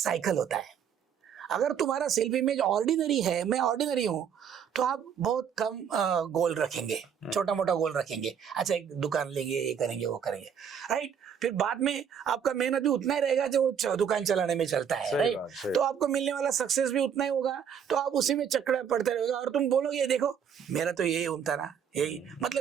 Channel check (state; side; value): quieter; left; 7.9 dB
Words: होता है। अगर तुम्हारा सेल्फ इमेज ऑर्डिनरी है, मैं ऑर्डिनरी हूँ, तो आप बहुत कम गोल रखेंगे, छोटा मोटा गोल रखेंगे। अच्छा, एक दुकान लेंगे, ये करेंगे, वो करेंगे, राइट। फिर बाद में आपका मेहनत भी उतना ही रहेगा जो दुकान चलाने में चलता है, राइट। तो आपको मिलने वाला सक्सेस भी उतना ही होगा, तो आप उसी में चक्कर पड़ते रहेगा और तुम बोलोगे देखो मेरा तो यही उनता ना, यही